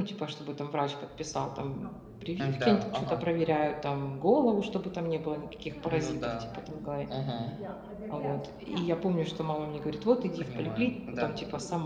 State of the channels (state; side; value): identical; both; correlation 1.00